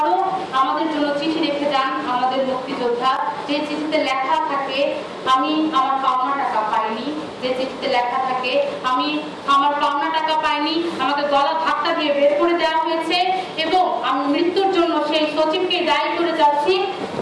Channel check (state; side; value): identical; both; correlation 1.00